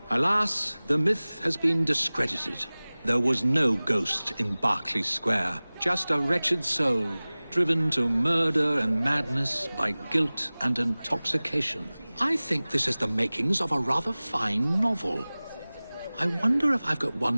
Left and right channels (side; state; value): both; inverted; correlation -0.99